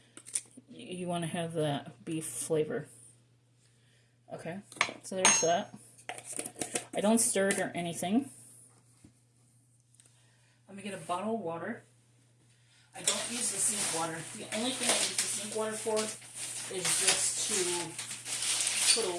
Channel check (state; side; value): identical; both; correlation 1.00